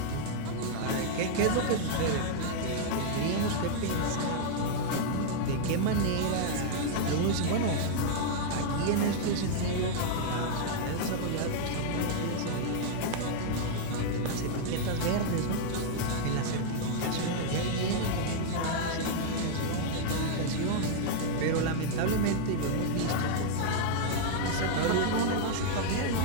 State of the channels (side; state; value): both; different; correlation -0.01